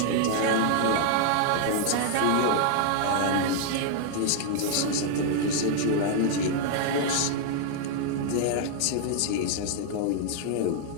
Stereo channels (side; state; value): both; different; correlation 0.00